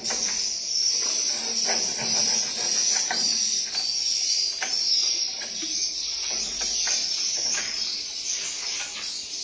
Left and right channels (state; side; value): identical; both; correlation 1.00